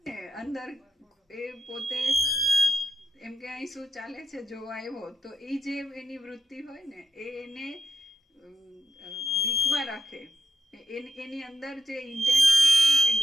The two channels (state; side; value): normal; both; correlation 0.83